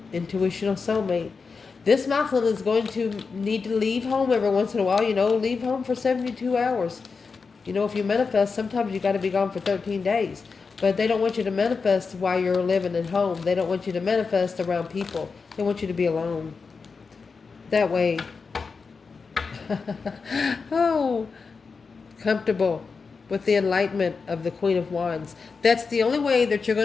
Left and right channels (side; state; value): right; quieter; 4.9 dB